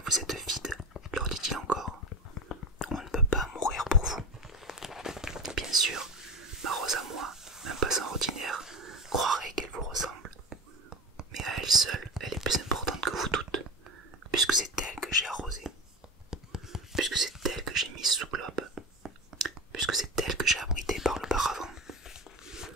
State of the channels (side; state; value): both; normal; correlation 0.26